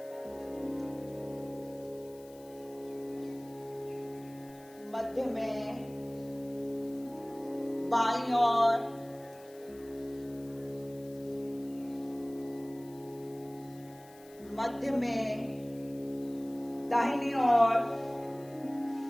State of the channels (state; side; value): noise; left; hiss, 24 dB below the sound